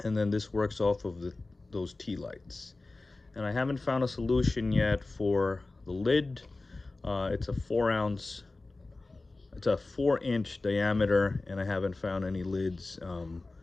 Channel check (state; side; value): quieter; right; 3.3 dB